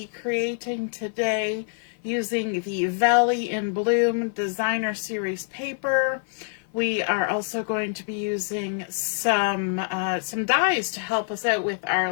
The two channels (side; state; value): right; silent; 55 dB below the other